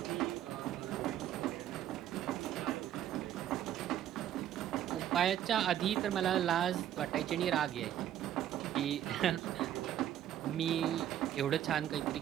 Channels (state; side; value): quieter; left; 11.4 dB